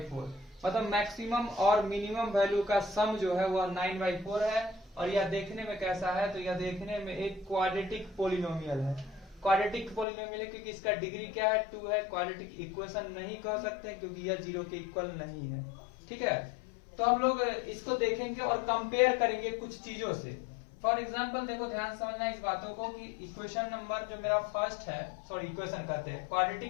मतलब maximum और minimum value का सम जो है वह 9/4 है। और यह देखने में कैसा है, तो यह देखने में एक क्वाड्रेटिक पोलिनोमियल है। क्वाड्रेटिक पोलिनोमियल है क्योंकि इसका डिग्री क्या है, 2 है। क्वाड्रेटिक इक्वेशन नहीं कह सकते क्योंकि यह 0 के इक्वल नहीं है। ठीक है, तो हम लोग इसको देखेंगे और कंपेयर करेंगे कुछ चीजों से। फॉर एग्जाम्पल देखो, ध्यान समझना इस बातों को कि इक्वेशन नंबर जो मेरा फर्स्ट है, सॉरी इक्वेशन कहते हैं,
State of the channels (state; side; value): drops out; right; at 10.1 s